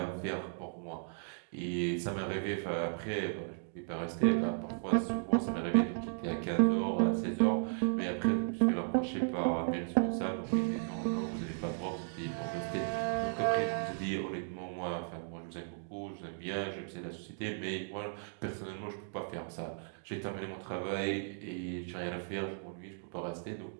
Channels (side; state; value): left; silent; digital silence